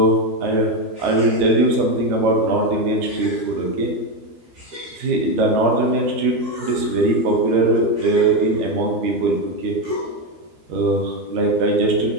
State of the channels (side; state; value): left; late; 13 ms